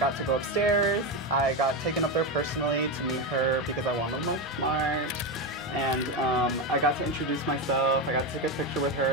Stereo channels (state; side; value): normal; both; correlation 0.13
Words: to go upstairs. I got taken up there personally to meet her because I wanted to look smart. And I got to introduce myself. I got to take a picture with